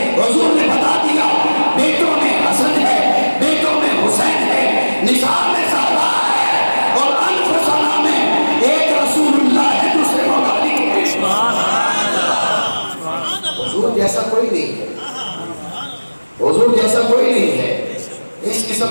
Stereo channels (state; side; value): inverted; both; correlation -1.00